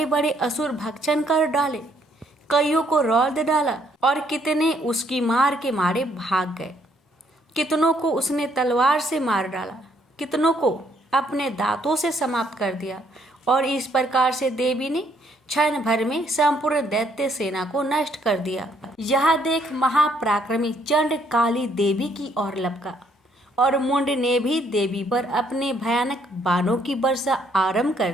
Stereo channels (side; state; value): both; normal; correlation 0.69